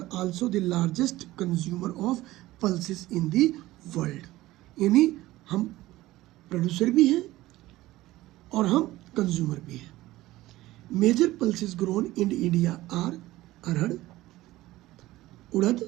also the largest consumer of pulses in the world. यानी हम producer भी हैं और हम consumer भी हैं. Major pulses grown in India are arhar,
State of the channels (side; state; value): left; quieter; 17.1 dB